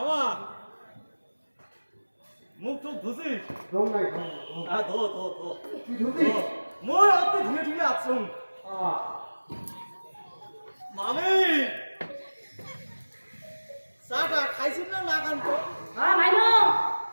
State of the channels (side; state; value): both; inverted; correlation -1.00